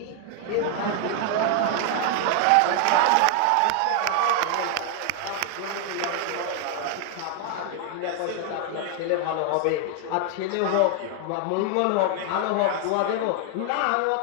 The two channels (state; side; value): different; both; correlation 0.00